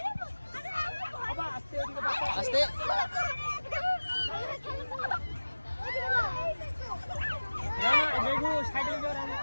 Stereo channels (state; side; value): inverted; both; correlation -1.00